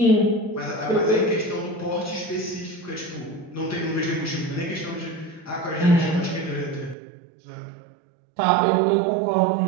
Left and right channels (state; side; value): drops out; left; at 7.0 s